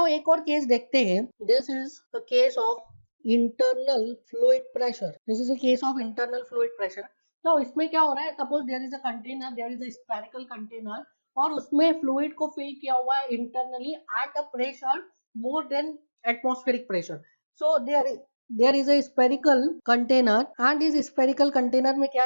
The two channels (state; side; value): inverted; both; correlation -1.00